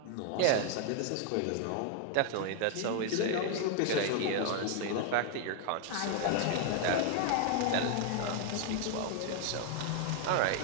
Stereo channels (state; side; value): different; both; correlation 0.00